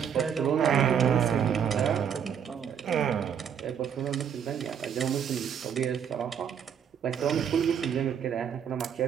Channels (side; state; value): left; quieter; 8.1 dB